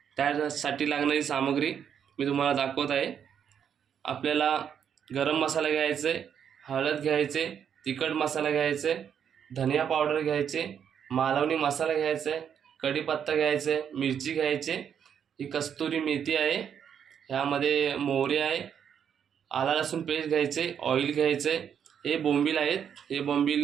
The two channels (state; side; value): quieter; left; 8.2 dB